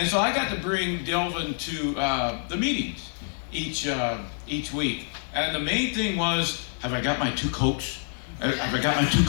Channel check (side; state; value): right; silent; 60 dB below the other